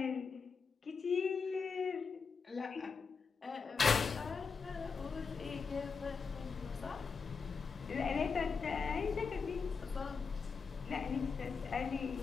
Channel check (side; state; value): right; quieter; 5.3 dB